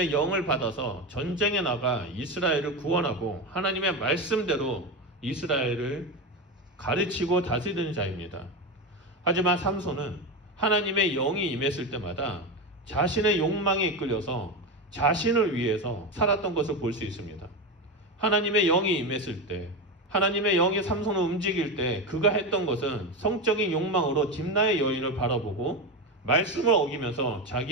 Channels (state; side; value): normal; both; correlation 0.17